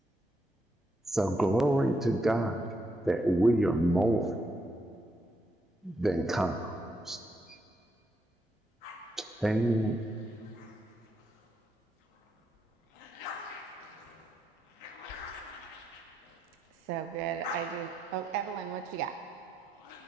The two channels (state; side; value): normal; both; correlation 0.80